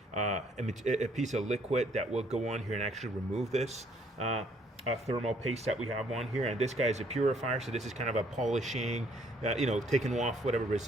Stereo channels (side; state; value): both; normal; correlation 0.65